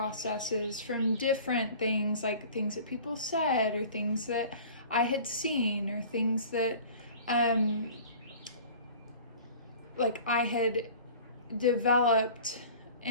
from different things, like things that people said or things that I had seen or things that like I had developed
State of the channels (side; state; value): both; inverted; correlation -0.44